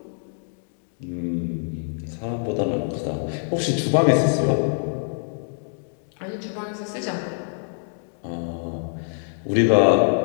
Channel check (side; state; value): right; silent; digital silence